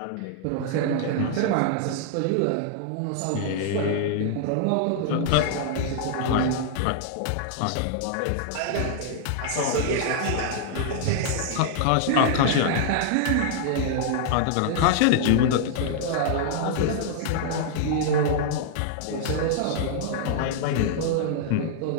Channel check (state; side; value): different; both; correlation -0.01